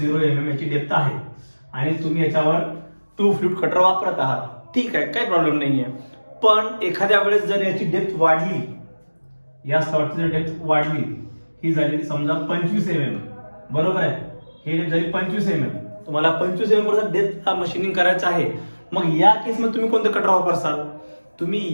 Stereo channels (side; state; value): both; inverted; correlation -1.00